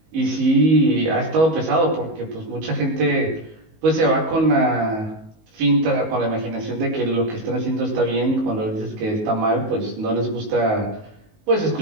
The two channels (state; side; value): late; left; 19 ms